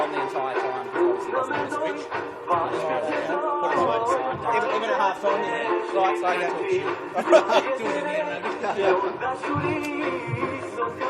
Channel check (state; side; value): identical; both; correlation 1.00